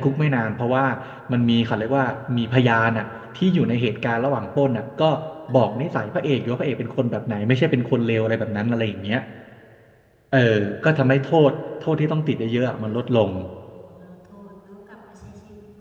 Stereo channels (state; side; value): identical; both; correlation 1.00